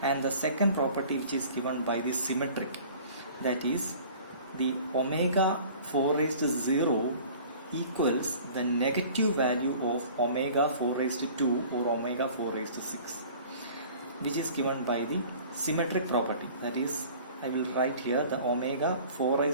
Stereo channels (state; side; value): inverted; both; correlation -0.47